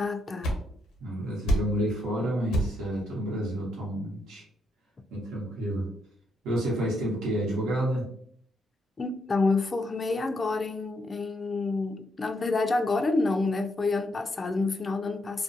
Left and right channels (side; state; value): both; normal; correlation 0.78